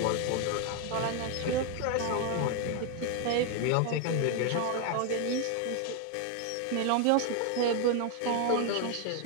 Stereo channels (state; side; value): different; both; correlation 0.01